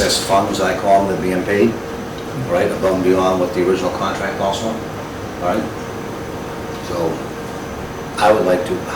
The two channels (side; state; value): both; identical; correlation 1.00